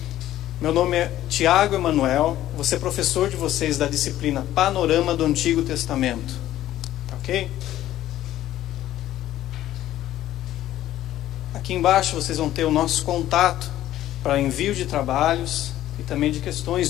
Meu nome é Tiago Emanuel. Vou ser professor de vocês da disciplina Panorama do Antigo Testamento. Tá ok? Aqui embaixo vocês vão ter o nosso contato para envio de trabalhos e também de questões,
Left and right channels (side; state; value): right; quieter; 13.5 dB